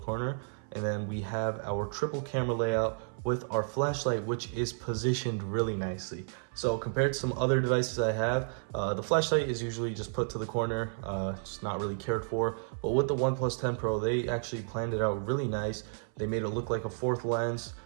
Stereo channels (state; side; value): silent; left; 57 dB below the other